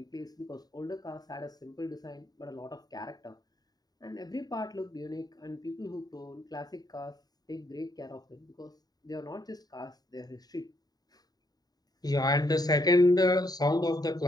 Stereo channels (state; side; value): late; right; 0.19 ms